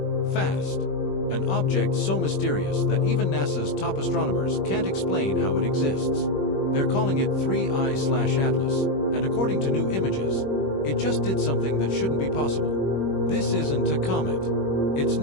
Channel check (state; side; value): late; right; 21 ms